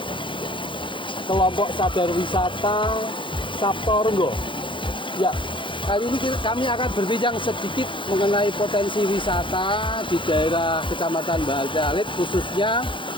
kelompok sadar wisata Saptorenggo. Ya, kali ini kami akan berbincang sedikit mengenai potensi wisata di daerah Kecamatan Batialit, khususnya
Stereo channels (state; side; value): late; right; 0.24 ms